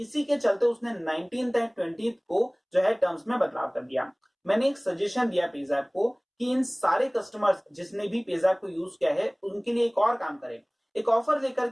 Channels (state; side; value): identical; both; correlation 1.00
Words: के चलते उसने 19th एंड 20th को जो है टर्म्स में बदलाव कर दिया। मैंने एक सजेशन दिया पेज़ैप को कि इन सारे कस्टमर्स जिसने भी पेज़ैप को यूज किया है उनके लिए एक और काम करें, एक ऑफर लेकर